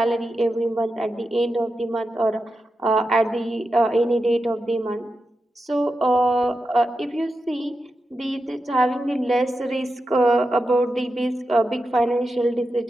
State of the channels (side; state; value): both; normal; correlation 0.89